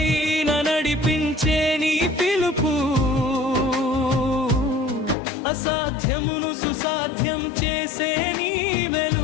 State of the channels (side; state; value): right; drops out; at 5.2 s